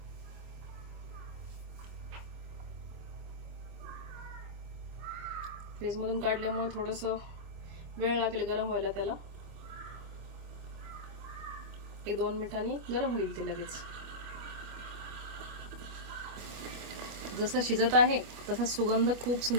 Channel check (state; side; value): late; left; 25 ms